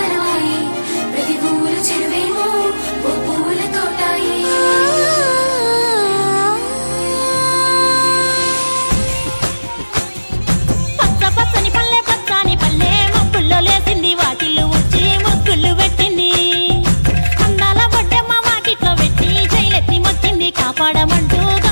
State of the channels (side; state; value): both; inverted; correlation -1.00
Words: ప్రతి ఊరు చెరువేమో ఓ పూల తోటాయే లేసింది వాకిళ్ళు వచ్చి ముగ్గులు పెట్టింది అందాల బొడ్డమ్మ వాకిట్లో పెట్టి జైలెత్తి మొక్కింది కాపాడమంటూ